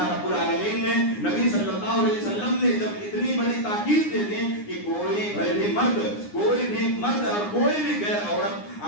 رب العالمین نے، نبی صلی اللہ علیہ وسلم نے جب اتنی بڑی تاکید دے دی کہ کوئی بھی مرد اور کوئی بھی غیر عورت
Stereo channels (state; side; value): late; right; 9.8 ms